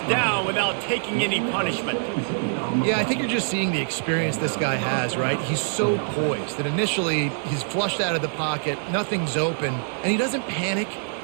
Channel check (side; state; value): left; silent; 62 dB below the other